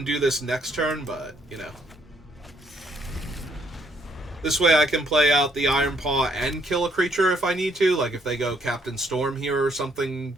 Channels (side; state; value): both; normal; correlation 0.70